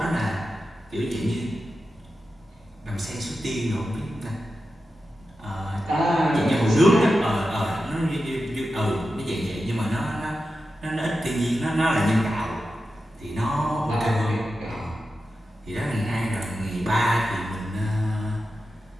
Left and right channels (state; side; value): normal; both; correlation 0.91